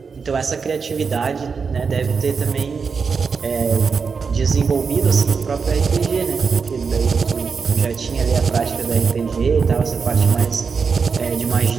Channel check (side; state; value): left; quieter; 5.4 dB